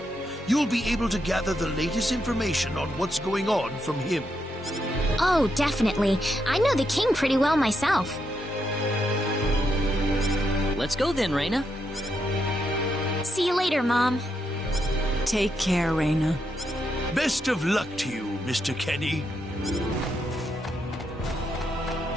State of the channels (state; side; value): normal; both; correlation 0.81